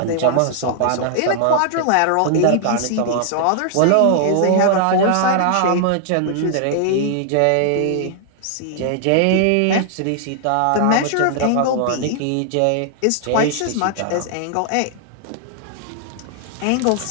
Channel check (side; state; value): both; different; correlation 0.00